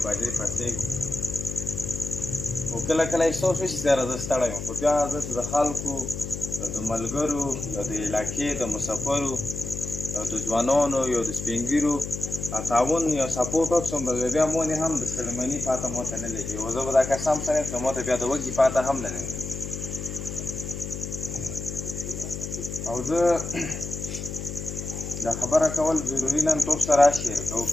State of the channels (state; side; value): noise; left; hum, 7 dB below the sound